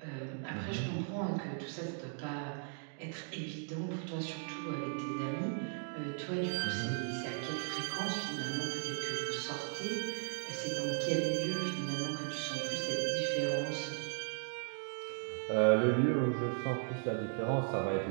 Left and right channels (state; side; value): silent; left; 53 dB below the other